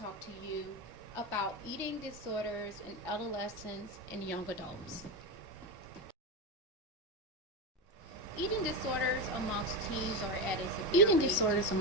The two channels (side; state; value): both; normal; correlation 0.14